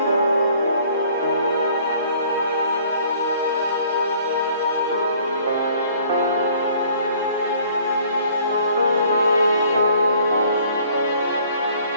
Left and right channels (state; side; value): inverted; both; correlation -0.57